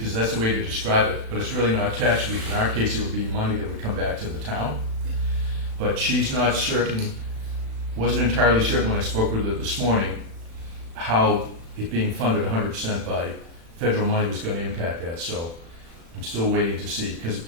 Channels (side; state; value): left; late; 36 ms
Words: that's the way to describe it, but it's really not tax relief. In our case, it would be money that would come back to the town. But she's not certain, wasn't entirely certain when I spoke with her this morning, how it being funded 100% by federal money was going to impact that. So I'm still waiting to see, because